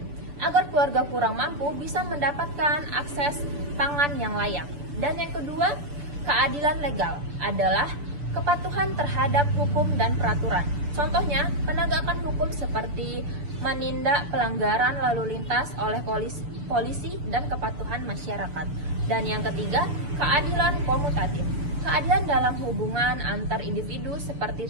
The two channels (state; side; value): late; left; 6.9 ms